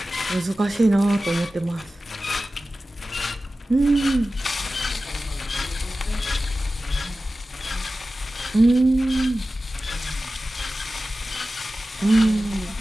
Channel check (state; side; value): normal; both; correlation 0.95